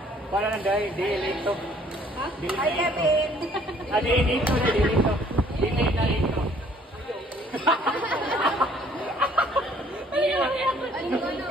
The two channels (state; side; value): normal; both; correlation 0.59